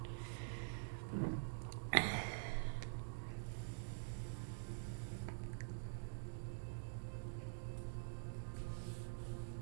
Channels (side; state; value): left; silent; digital silence